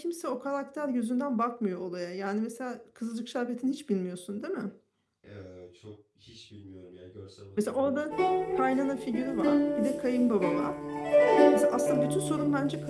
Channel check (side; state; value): both; identical; correlation 1.00